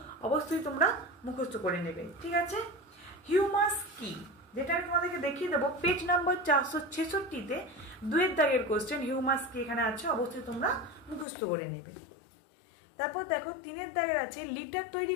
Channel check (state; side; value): drops out; right; at 11.2 s